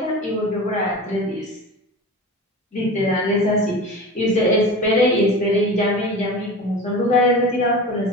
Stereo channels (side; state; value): both; normal; correlation 0.32